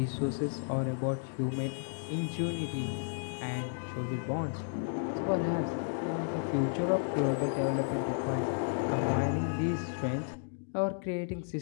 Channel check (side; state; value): right; silent; digital silence